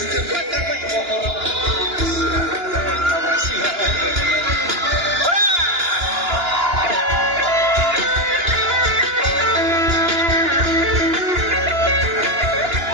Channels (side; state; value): left; late; 2.9 ms